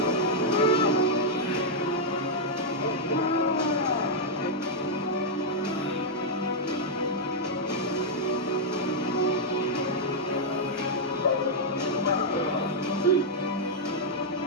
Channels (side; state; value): both; normal; correlation -0.04